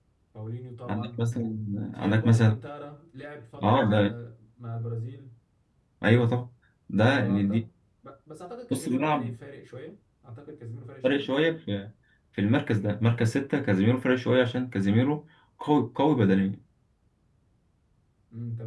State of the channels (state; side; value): identical; both; correlation 1.00